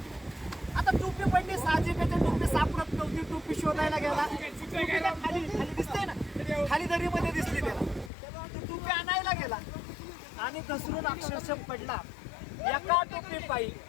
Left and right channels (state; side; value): drops out; right; at 8.1 s